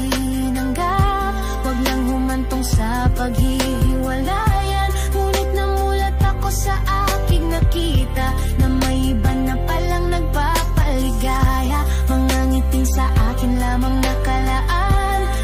wag lang humantong sa paghihiwalayan. Ngunit namulat ako sa aking nakita na may iba na palang nagpapaligaya. Mga ngiting sa akin lamang nakalaan,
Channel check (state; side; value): identical; both; correlation 1.00